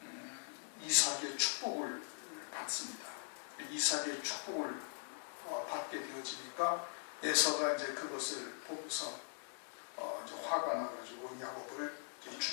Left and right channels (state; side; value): silent; right; digital silence